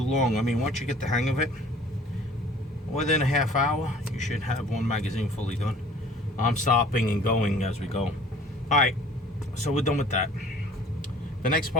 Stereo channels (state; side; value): normal; both; correlation 0.50